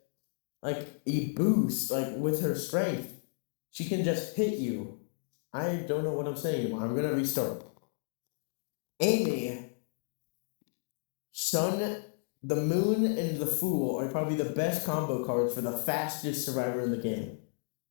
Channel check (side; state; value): right; silent; digital silence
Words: like a boost with her strength. She can just hit you. I don't know what I'm saying anymore. I'm gonna restart. Amy, Sun, the Moon, and the Fool are probably the best combo cards for the fastest survivor in the game.